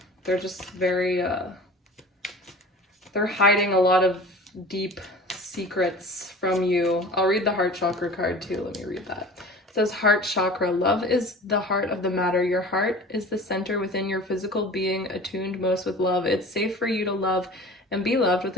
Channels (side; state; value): both; normal; correlation 0.40